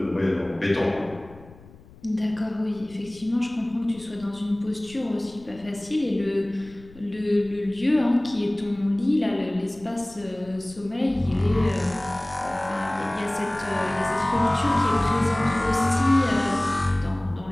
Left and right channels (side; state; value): left; noise; rumble, 22 dB below the sound